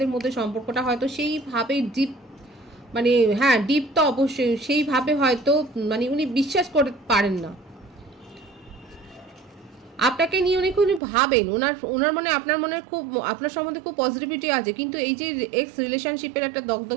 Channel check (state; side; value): drops out; left; at 11.0 s